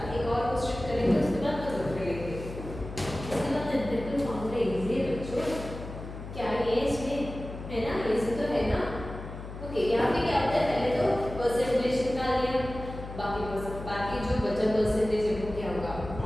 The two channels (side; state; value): left; noise; hum, 10 dB below the sound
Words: एक और क्वेश्चन करेंगे उसके बाद खत्म करेंगे, उसके बाद एम्पिरिकल फार्मूला इजी है बच्चों, क्या ये इसमें है ना, इजी तो है ना। ओके, यहाँ पे क्या होता है, पहले तो परसेंटेज निकाल लिया, बाकी जो बचा परसेंटेज है वो क्या होगा,